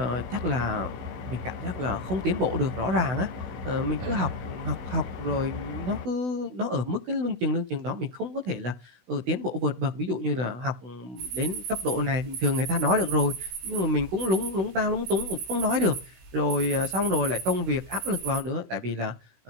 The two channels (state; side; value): late; left; 16 ms